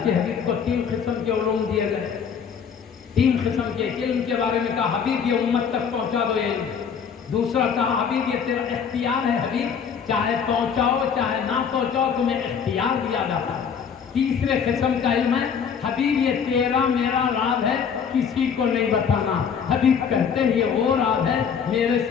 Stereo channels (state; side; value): quieter; right; 7.0 dB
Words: کے حبیب کو 3 قسم کے علوم دیے گئے. 3 قسم کے علم کے بارے میں کہا حبیب یہ امت تک پہنچا دو یہ علم. دوسرا کہا حبیب یہ تیرا اختیار ہے، حبیب چاہے پہنچاؤ چاہے نہ پہنچاؤ تمہیں اختیار دیا جاتا ہے. تیسرے قسم کا علم ہے حبیب یہ تیرا میرا راز ہے کسی کو نہیں بتانا. حبیب کہتے ہیں یہ وہ راز ہے میرے